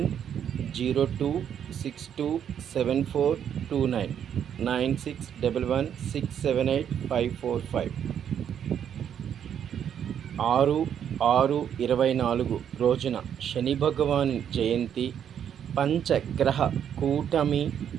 9611678545. 6/6/24 రోజున శని భగవాను జయంతి, పంచగ్రహ కూటమి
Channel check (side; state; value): left; quieter; 8.9 dB